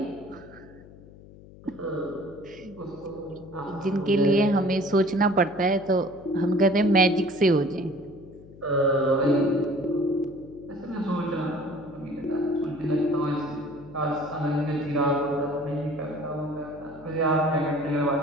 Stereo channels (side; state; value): left; noise; hum, 20 dB below the sound